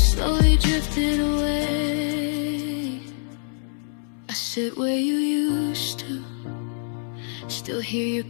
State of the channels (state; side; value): silent; right; 62 dB below the other